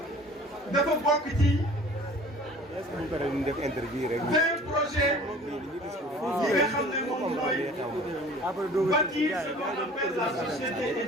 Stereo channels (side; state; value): both; normal; correlation 0.47